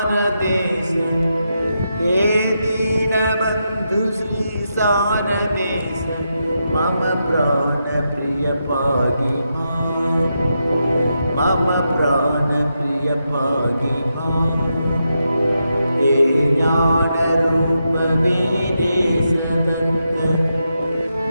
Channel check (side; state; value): both; inverted; correlation -0.85